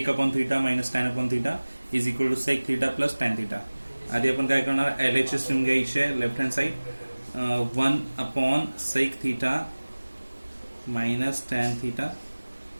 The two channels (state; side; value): inverted; both; correlation -1.00